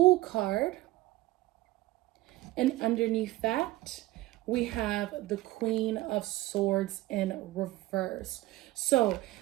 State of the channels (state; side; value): quieter; left; 17.6 dB